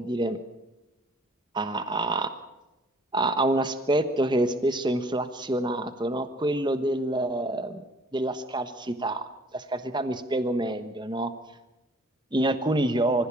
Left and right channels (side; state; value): both; normal; correlation 0.55